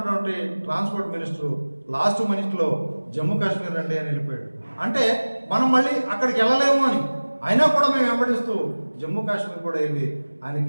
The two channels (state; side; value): inverted; both; correlation -1.00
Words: ట్రాన్స్పోర్ట్ మినిస్టర్ లాస్ట్ మినిట్లో జమ్మూ కాశ్మీర్ రండి అని వెళ్ళిపోయాడు. అంటే మనం మళ్ళీ అక్కడికి వెళ్ళలేము అని అయినా కూడా మేము వెంబడిస్తూ జమ్మూ కాశ్మీర్ కూడా వెళ్ళి